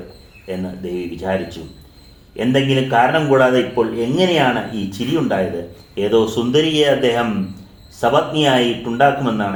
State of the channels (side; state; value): both; identical; correlation 1.00